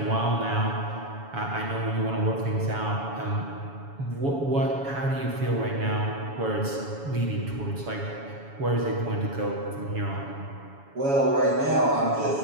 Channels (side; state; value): left; late; 7.1 ms